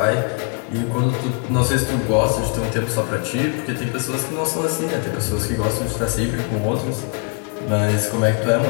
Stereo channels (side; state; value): right; quieter; 35.8 dB